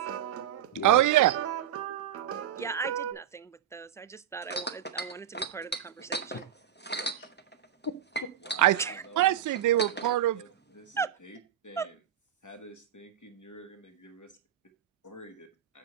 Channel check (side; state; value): left; quieter; 10.4 dB